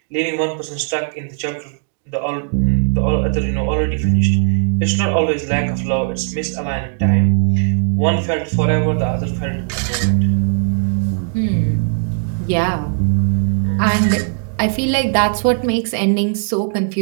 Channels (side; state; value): left; silent; 68 dB below the other